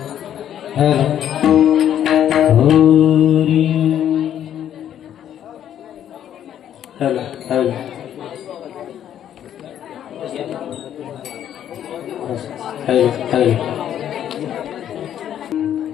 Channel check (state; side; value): quieter; right; 10.3 dB